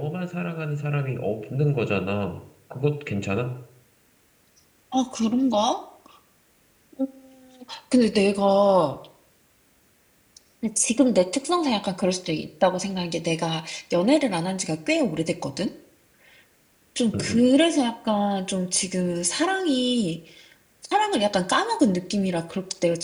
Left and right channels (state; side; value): identical; both; correlation 1.00